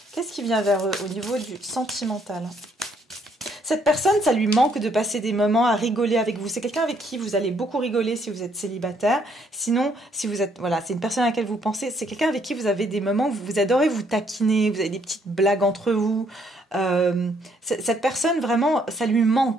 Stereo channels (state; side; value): normal; both; correlation 0.69